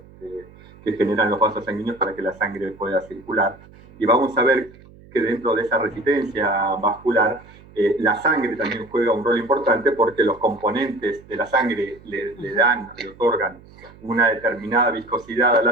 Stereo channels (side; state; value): right; noise; hum, 23 dB below the sound